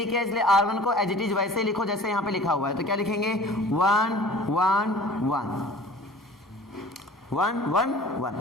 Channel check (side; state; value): both; normal; correlation 0.45